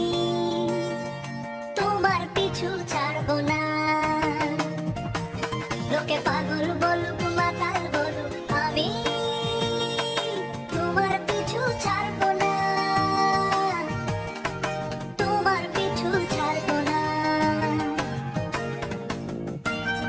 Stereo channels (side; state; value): both; identical; correlation 1.00